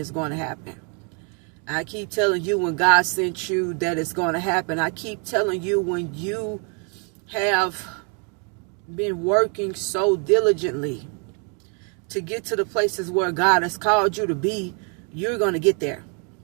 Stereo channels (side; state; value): left; quieter; 38.0 dB